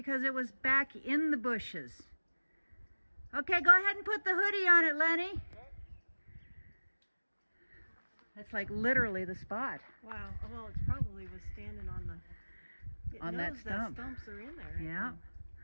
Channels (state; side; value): inverted; both; correlation -1.00